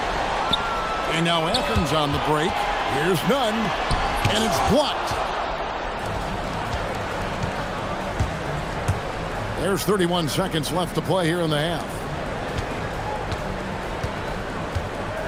And now Athens on the break. Here's Nunn. And it's blocked. There's 31 seconds left to play here in the half.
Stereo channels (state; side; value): identical; both; correlation 1.00